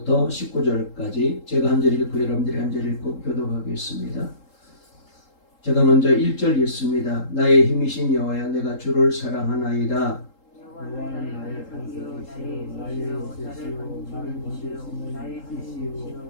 19절까지 제가 한 절 읽고 여러분들이 한 절 읽고 교독하겠습니다. 제가 먼저 1절 읽습니다. 나의 힘이신 여호와야, 내가 주를 사랑하나이다. 여호와는 나의 산이요 나의 빛이요 나를 감추는 이시요 나의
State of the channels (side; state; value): right; late; 3.8 ms